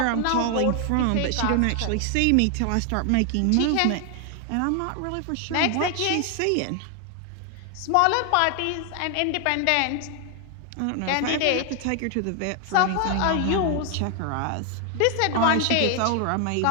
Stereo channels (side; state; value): both; different; correlation 0.00